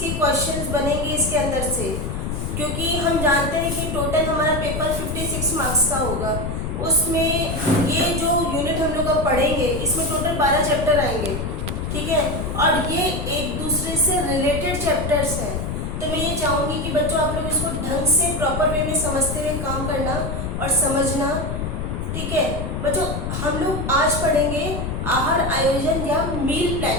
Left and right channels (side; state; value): left; noise; rumble, 3 dB below the sound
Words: क्वेश्चंस बनेंगे इसके अंदर से, क्योंकि हम जानते हैं कि टोटल हमारा पेपर 56 मार्क्स का होगा। उसमें ये जो यूनिट हम लोग अब पढ़ेंगे इसमें टोटल 12 चैप्टर आएंगे, ठीक है, और ये एक दूसरे से रिलेटेड चैप्टर्स हैं। तो मैं ये चाहूँगी कि बच्चों आप लोग इसको ढंग से प्रॉपर वे में समझते हुए काम करना और समझना, ठीक है। बच्चों हम लोग आज पढ़ेंगे आहार आयोजन या मील